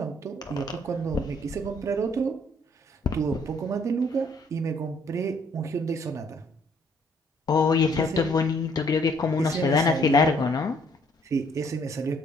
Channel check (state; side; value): normal; both; correlation 0.64